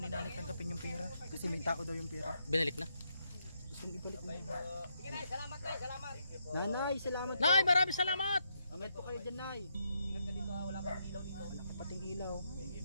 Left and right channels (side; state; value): both; inverted; correlation -0.79